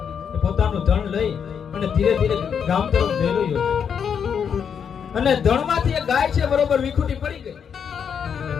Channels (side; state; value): right; quieter; 7.3 dB